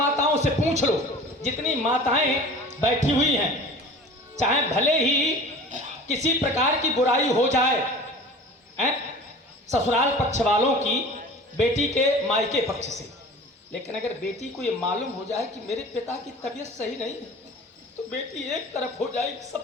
से पूछ लो, जितनी माताएं बैठी हुई हैं, चाहे भले ही किसी प्रकार की बुराई हो जाए, ससुराल पक्ष वालों की बेटी के मायके पक्ष से, लेकिन अगर बेटी को ये मालूम हो जाए कि मेरे पिता की तबीयत सही नहीं है, तो बेटी एक तरफ हो जाएगी,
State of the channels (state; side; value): normal; both; correlation 0.41